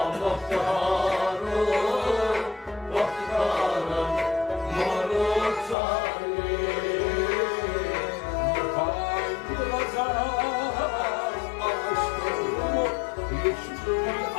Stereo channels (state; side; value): drops out; right; at 5.8 s